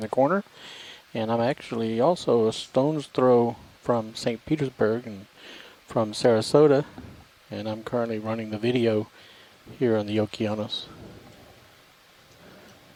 corner. And I'm actually also a stone's throw from St. Petersburg and from Sarasota. And I'm currently running the video here on the Okeanos.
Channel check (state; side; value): identical; both; correlation 1.00